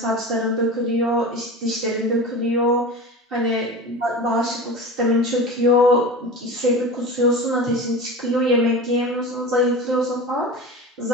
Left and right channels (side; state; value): both; normal; correlation 0.31